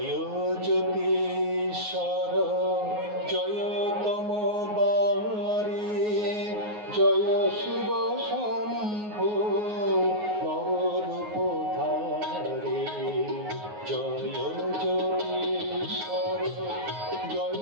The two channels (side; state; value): left; late; 9.5 ms